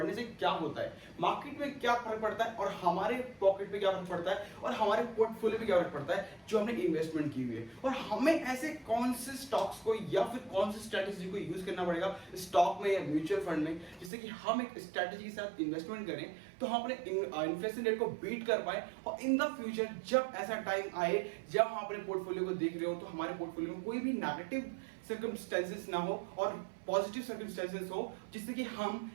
से क्या होता है, मार्केट में क्या फर्क पड़ता है और हमारे पॉकेट पे क्या फर्क पड़ता है और हमारे पोर्टफोलियो पे क्या फर्क पड़ता है जो हमने इन्वेस्टमेंट की हुई है, और हमें ऐसे कौन से स्टॉक्स को या फिर कौन सी स्ट्रैटेजी को यूज करना पड़ेगा स्टॉक में या म्यूचुअल फंड में, जिससे कि हम एक स्ट्रैटेजी के साथ इन्वेस्टमेंट करें तो हम अपने इन्फ्लेशन रेट को बीट कर पाए। और इन द फ्यूचर जब ऐसा टाइम आए जब हम अपने पोर्टफोलियो को देख रहे हो तो हमारे पोर्टफोलियो में कोई भी नेगेटिव सर्कमस्टेंसेस ना हो और पॉजिटिव सर्कमस्टेंसेस हो, जिससे कि हम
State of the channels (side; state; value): left; drops out; at 14.1 s